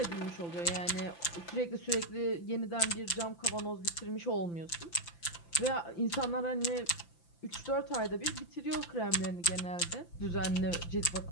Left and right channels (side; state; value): right; late; 5.9 ms